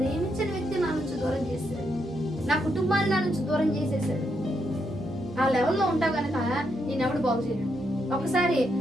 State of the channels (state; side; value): normal; both; correlation 0.79